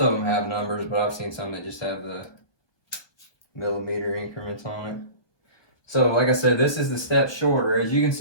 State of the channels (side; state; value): right; late; 1.4 ms